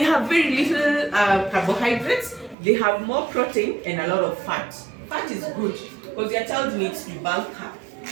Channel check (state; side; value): drops out; left; at 2.6 s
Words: have very little carbohydrates. They have more protein and a lot of fat. Fat is good because your child needs to bulk up.